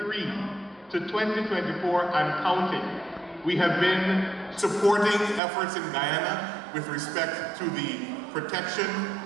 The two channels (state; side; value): drops out; left; at 5.4 s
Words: to 2024 and counting, we have been supporting efforts in Guyana with respect to the protection